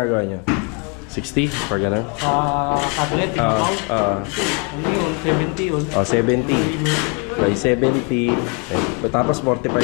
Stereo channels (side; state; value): right; quieter; 34.2 dB